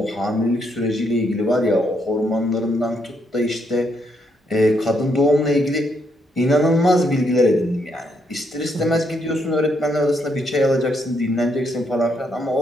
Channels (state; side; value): normal; both; correlation 0.76